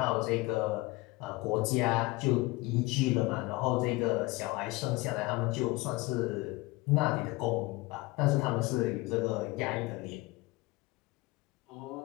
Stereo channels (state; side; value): quieter; right; 21.5 dB